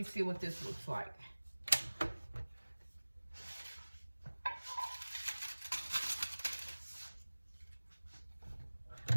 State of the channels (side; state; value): both; inverted; correlation -1.00